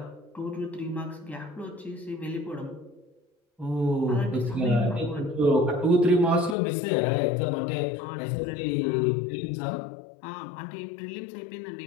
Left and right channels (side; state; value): right; drops out; at 6.6 s